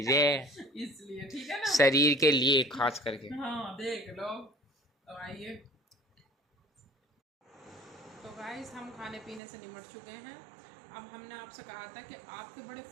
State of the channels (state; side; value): drops out; left; at 9.4 s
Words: है इसलिए ठीक है ना, शरीर के लिए खास करके। हाँ देख लो। तो आइए, तो गाइस हम खाने पीने से निमट चुके हैं। अब हमने आपसे कहा था कि आपके बड़े